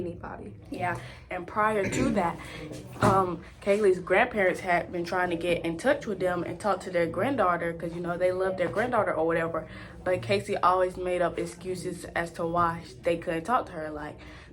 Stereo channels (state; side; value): identical; both; correlation 1.00